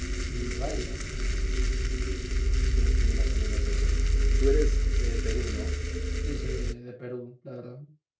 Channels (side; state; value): both; identical; correlation 1.00